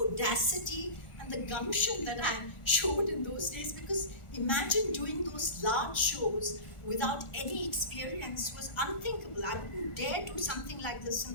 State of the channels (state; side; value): late; right; 1.4 ms